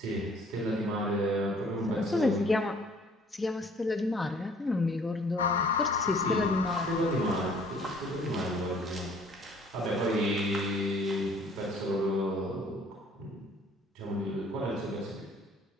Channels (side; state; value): both; normal; correlation 0.56